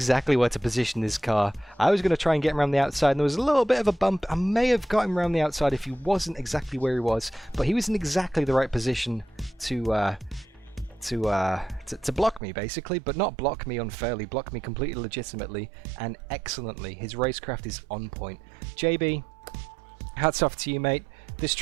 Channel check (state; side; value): drops out; left; at 12.4 s